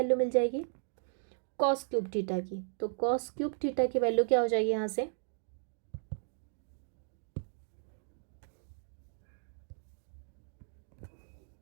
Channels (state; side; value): silent; left; digital silence